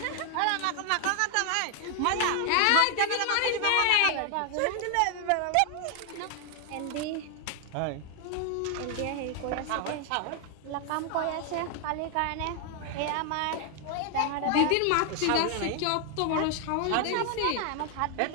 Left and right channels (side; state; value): both; different; correlation 0.00